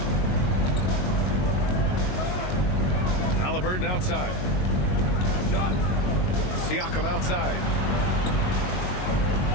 Halliburton outside. Siakam outside.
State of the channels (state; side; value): late; right; 22 ms